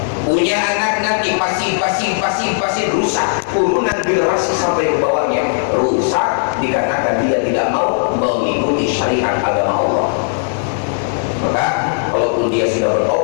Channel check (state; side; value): silent; right; 65 dB below the other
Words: Punya anak nanti pasif rusak, turunan generasi sampai ke bawahnya rusak dikarenakan dia tidak mau mengikuti syariat agama Allah. Maka kalaupun dia sudah